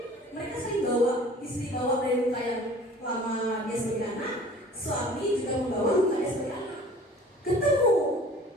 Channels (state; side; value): normal; both; correlation 0.47